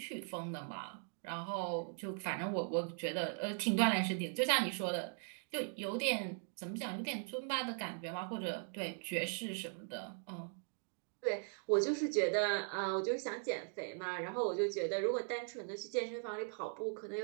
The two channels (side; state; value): left; silent; 51 dB below the other